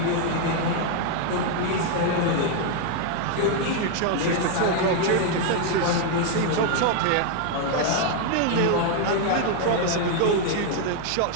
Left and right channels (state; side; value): different; both; correlation 0.00